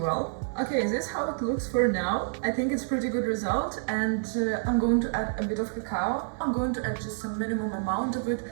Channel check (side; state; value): left; silent; digital silence